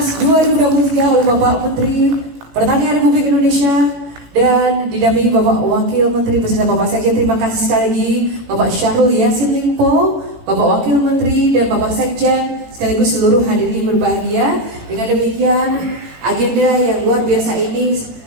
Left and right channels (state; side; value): late; left; 18 ms